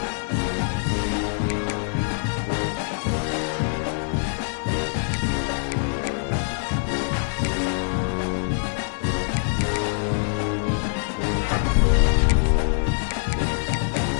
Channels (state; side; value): silent; right; digital silence